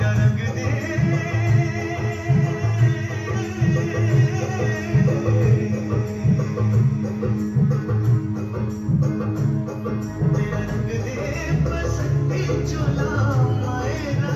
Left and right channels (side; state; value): both; identical; correlation 1.00